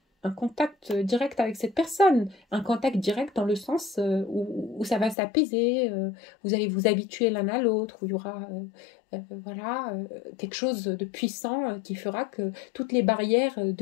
un contact direct avec cette personne. Un contact direct dans le sens où ça va s'apaiser, vous allez vous habituer l'un à l'autre, où il y aura voilà, quelque chose de puissant qui fera que toutes les barrières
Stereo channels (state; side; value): drops out; right; at 5.2 s